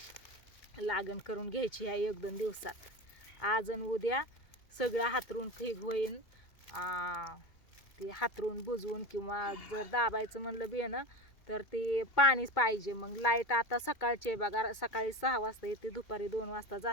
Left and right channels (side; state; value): right; late; 2.2 ms